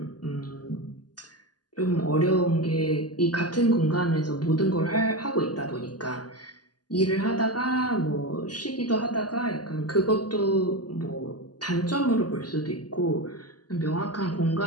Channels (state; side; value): late; right; 0.70 ms